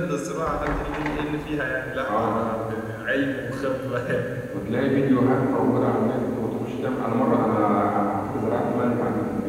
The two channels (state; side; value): identical; both; correlation 1.00